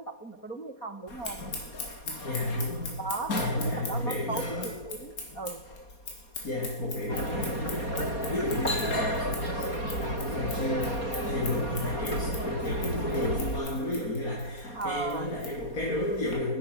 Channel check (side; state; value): right; late; 4.2 ms